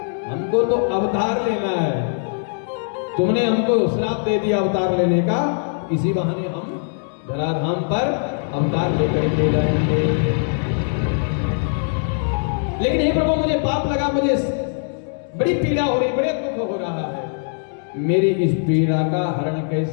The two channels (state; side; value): silent; right; digital silence